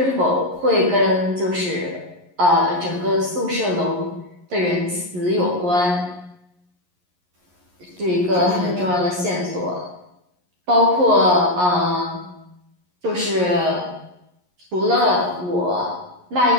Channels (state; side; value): late; left; 11 ms